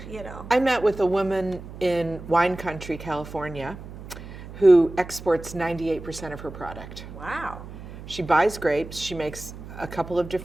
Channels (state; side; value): noise; right; hum, 13 dB below the sound